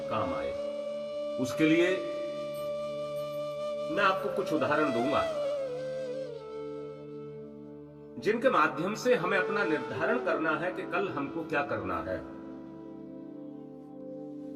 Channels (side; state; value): both; identical; correlation 1.00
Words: काम आए। उसके लिए मैं आपको कुछ उदाहरण दूंगा जिनके माध्यम से हमें अपना निर्धारण करना है कि कल हमको क्या करना है।